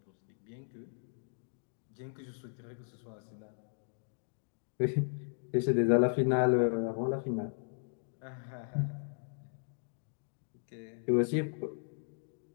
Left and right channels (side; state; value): right; silent; digital silence